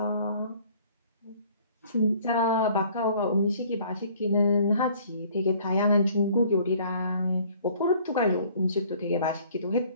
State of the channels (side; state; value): both; inverted; correlation -0.56